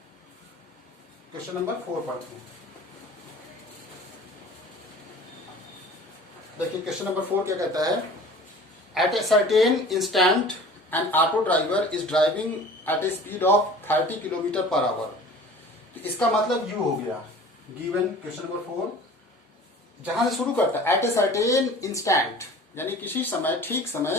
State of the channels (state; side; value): normal; both; correlation 0.44